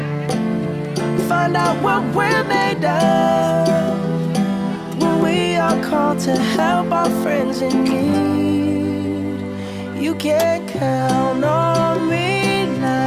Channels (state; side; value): identical; both; correlation 1.00